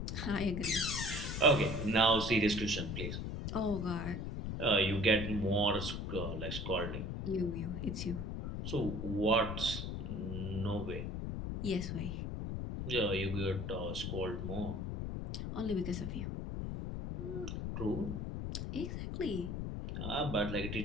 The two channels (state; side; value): noise; left; rumble, 4 dB below the sound